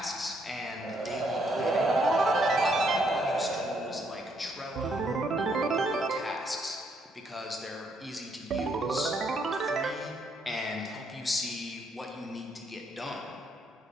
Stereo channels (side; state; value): both; normal; correlation 0.72